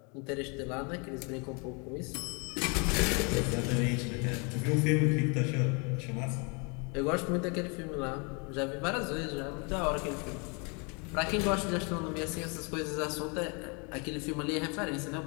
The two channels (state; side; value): quieter; right; 33.2 dB